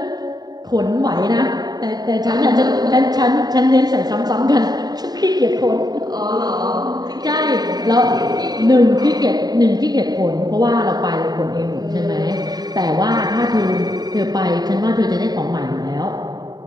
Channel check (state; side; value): late; left; 0.19 ms